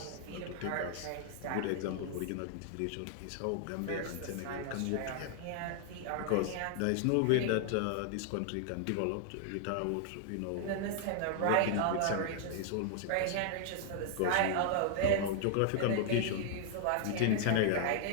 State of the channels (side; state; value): both; different; correlation -0.01